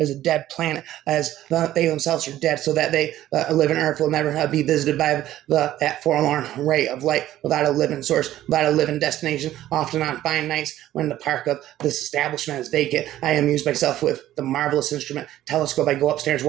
a dead planet, as they themselves are dead, so that they live in earth will never be visited by that forlorn ray of light, without a living source, without a living destination. Often on fine nights when the park of this establishment is vacant, I amuse myself with the marvelous instrument telescope. I go upstairs,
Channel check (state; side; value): quieter; left; 13.5 dB